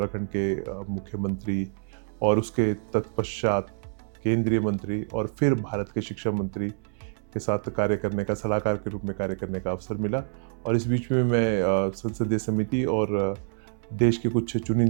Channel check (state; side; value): silent; left; 60 dB below the other